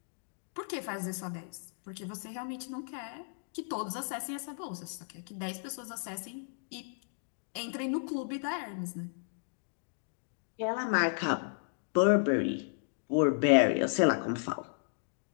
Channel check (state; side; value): silent; right; digital silence